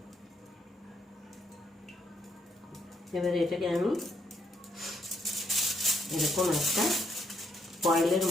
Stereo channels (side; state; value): both; normal; correlation 0.74